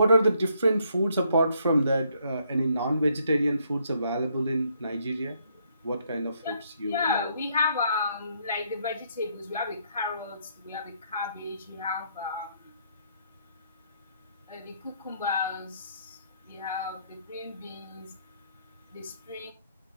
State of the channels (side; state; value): both; inverted; correlation -0.72